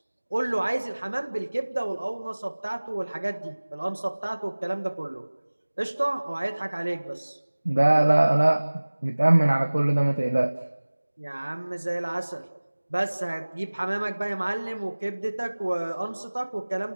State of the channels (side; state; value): both; inverted; correlation -1.00